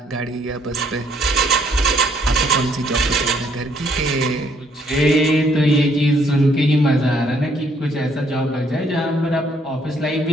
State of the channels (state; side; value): normal; both; correlation 0.67